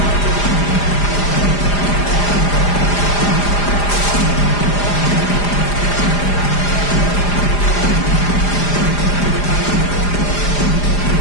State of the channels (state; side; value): late; right; 4.9 ms